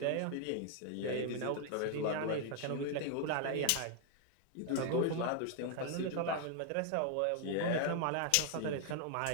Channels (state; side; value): different; both; correlation 0.00